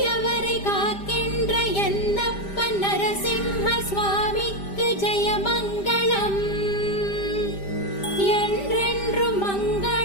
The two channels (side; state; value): right; late; 5.0 ms